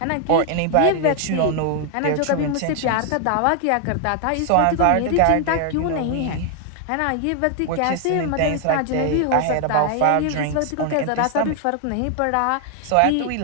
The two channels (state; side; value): different; both; correlation 0.00